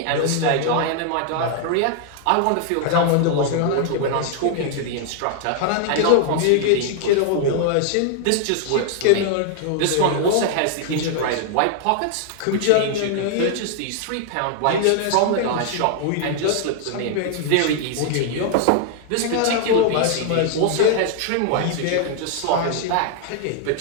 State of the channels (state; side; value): different; both; correlation 0.00